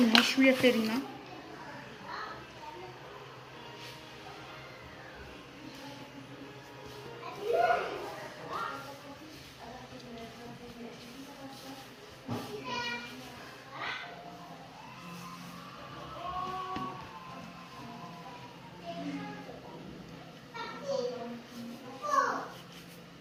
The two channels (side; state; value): both; identical; correlation 1.00